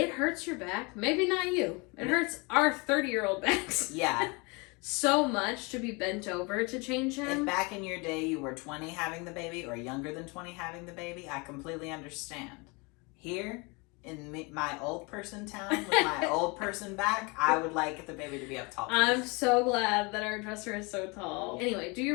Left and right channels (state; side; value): quieter; right; 28.6 dB